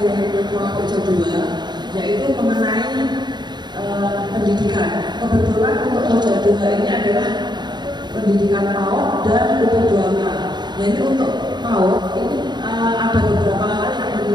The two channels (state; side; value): late; left; 0.21 ms